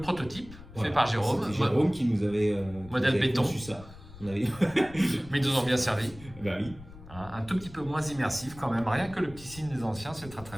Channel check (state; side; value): noise; left; rumble, 18 dB below the sound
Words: fait par Jérôme. C'est Jérôme qui nous avait modèle béton. conçu ça. Mais ils nous ont bien servi. Bah oui. Un tout petit peu moins immersif quand même. Rien que le petit signe des anciens, c'est très